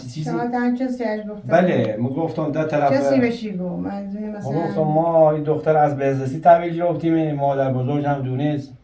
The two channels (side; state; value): both; identical; correlation 1.00